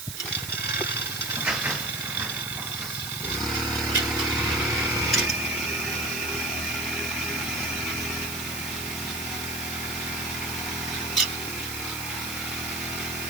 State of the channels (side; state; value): right; noise; hiss, 7 dB below the sound